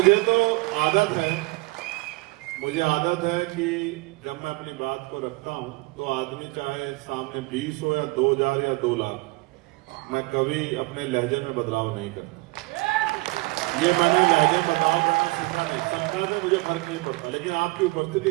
मुझे आदत है कि जब मैं अपनी बात को रखता हूं तो आदमी चाहे सामने 20 हो या 2000 या 2 लाख, मैं कभी अपने लहजे में बदलाव नहीं करता। ये मैंने लहजे बदलाव करना सीखा नहीं, संख्या में मुझे फर्क नहीं पड़ता, लेकिन आपकी उपस्थिति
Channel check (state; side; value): quieter; left; 23.7 dB